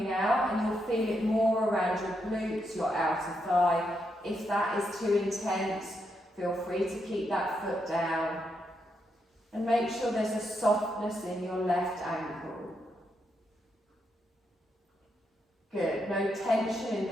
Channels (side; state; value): both; normal; correlation 0.81